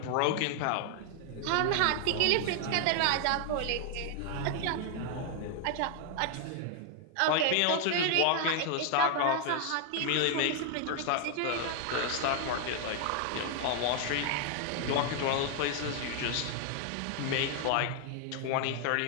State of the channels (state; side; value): different; both; correlation 0.00